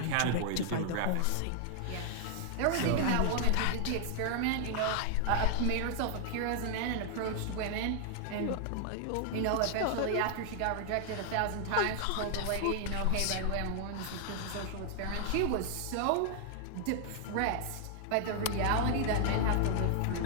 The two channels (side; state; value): both; different; correlation 0.00